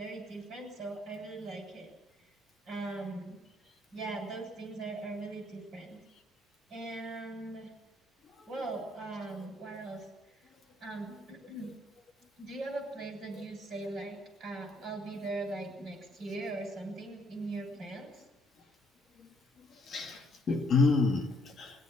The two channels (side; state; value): both; normal; correlation 0.68